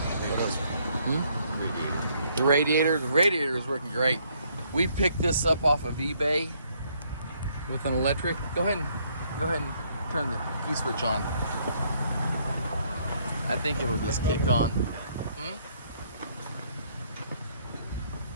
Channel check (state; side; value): inverted; both; correlation -0.68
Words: The radiator is working great. We picked this up off of eBay with an electric. Go ahead and turn the key switch on. I think it'll just kick on.